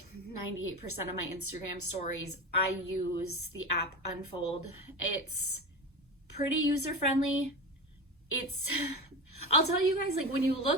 98% of my Instagram stories. I use the app Unfold. It's pretty user-friendly. I'll tell you guys, like when you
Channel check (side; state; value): both; normal; correlation 0.24